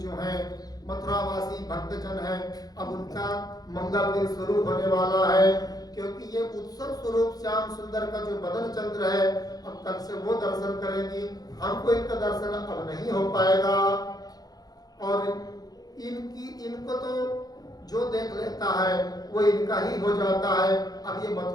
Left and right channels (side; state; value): right; late; 0.19 ms